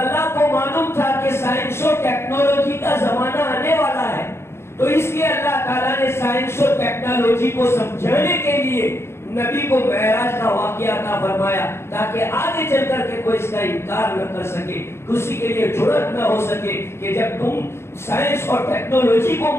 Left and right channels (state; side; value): late; right; 0.12 ms